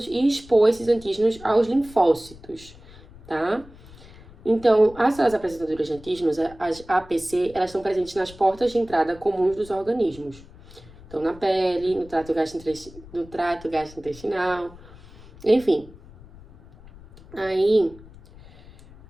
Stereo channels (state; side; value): noise; left; rumble, 21 dB below the sound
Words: e expor esses antígenos aos linfócitos, tá? Então, as células apresentadoras de antígenos, as APC, elas estão presentes nas portas de entrada comuns dos organismos. Então, na pele, no trato gastrointestinal, enfim. Aí,